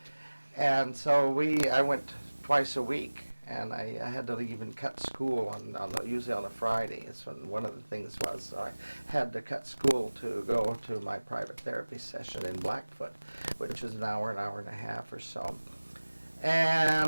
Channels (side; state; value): both; inverted; correlation -1.00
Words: And so I went twice a week, and I had to even cut school usually on a Friday. That's when one of the things was. So I had to cut school to go to my private therapy session in Blackfoot, which was an hour and a half or so.